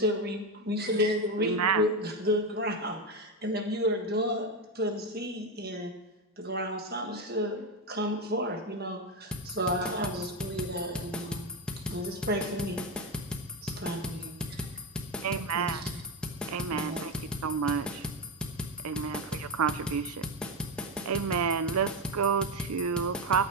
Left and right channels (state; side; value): normal; both; correlation 0.11